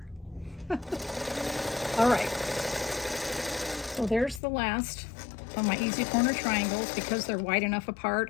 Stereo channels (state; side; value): drops out; right; at 4.4 s